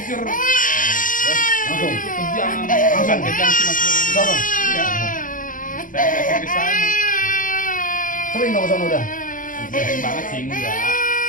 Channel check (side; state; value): right; late; 0.39 ms